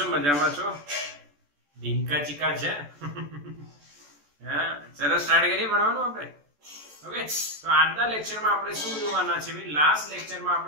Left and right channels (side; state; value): left; late; 14 ms